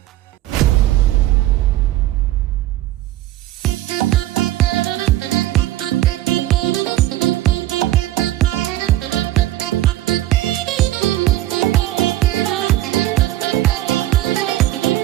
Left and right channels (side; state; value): left; quieter; 15.0 dB